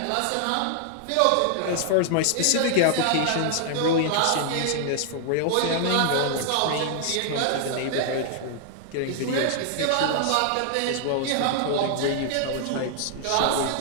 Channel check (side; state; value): both; different; correlation 0.00